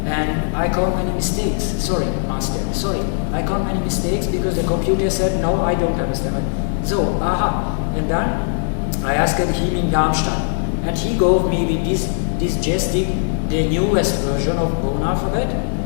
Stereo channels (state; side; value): silent; right; digital silence